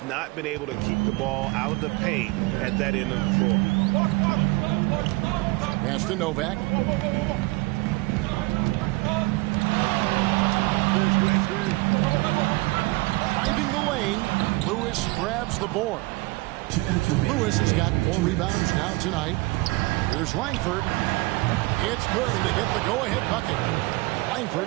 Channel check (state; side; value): quieter; left; 23.4 dB